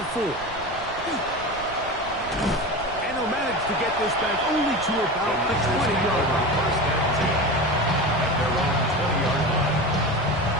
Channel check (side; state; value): right; noise; rumble, 17 dB below the sound